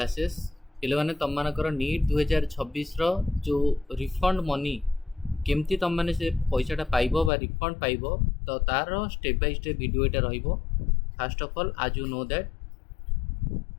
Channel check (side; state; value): right; drops out; at 7.3 s